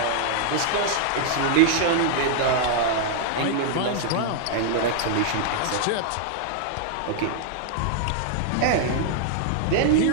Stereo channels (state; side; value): different; both; correlation -0.01